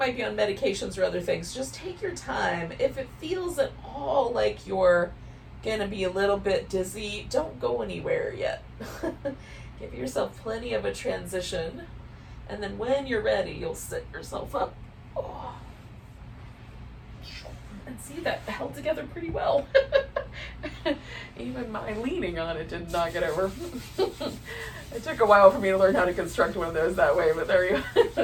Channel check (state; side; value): identical; both; correlation 1.00